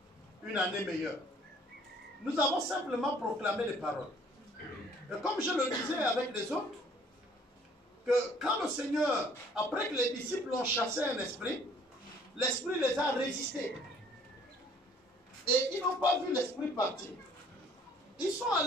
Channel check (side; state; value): both; normal; correlation 0.57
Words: une année meilleure. Nous avons simplement proclamé les paroles. Et comme je le disais avec les autres, que quand le Seigneur, après que les disciples ont chassé un esprit, l'esprit les a résistés. Et ils n'ont pas vu l'esprit partir. Ils sont